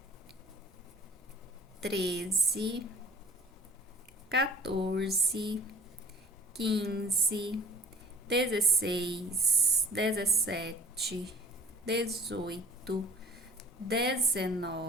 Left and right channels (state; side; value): normal; both; correlation 0.48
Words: 13, 14, 15, 16, 17, 18,